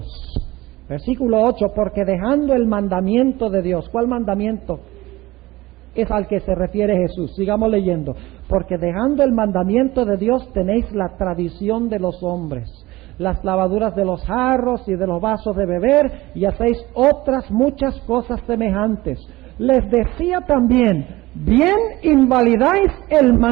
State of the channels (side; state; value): left; quieter; 19.1 dB